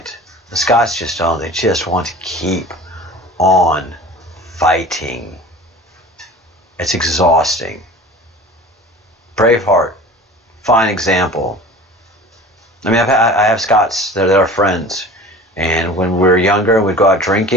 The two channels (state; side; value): normal; both; correlation 0.40